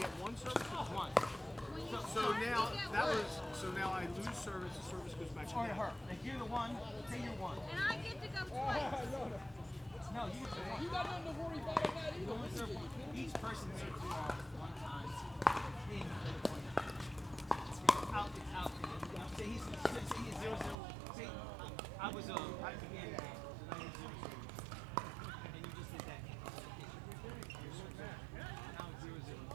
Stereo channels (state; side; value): drops out; left; at 20.8 s